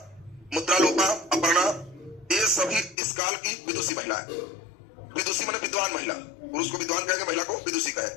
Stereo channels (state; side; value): drops out; right; at 3.0 s